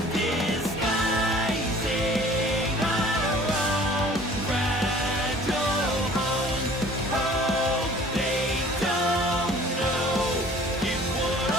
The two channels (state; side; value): normal; both; correlation 0.50